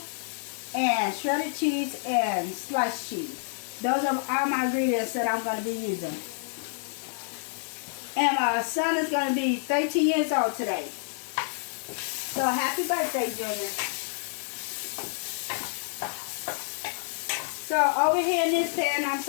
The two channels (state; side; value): silent; right; digital silence